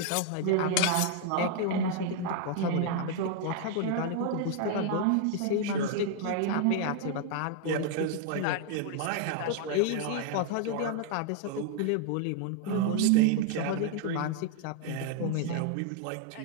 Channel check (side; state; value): both; different; correlation 0.00